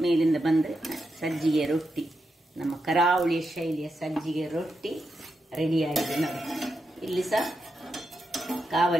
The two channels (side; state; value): both; normal; correlation 0.86